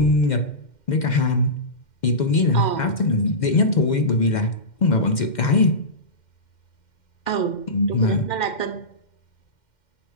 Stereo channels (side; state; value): right; late; 2.1 ms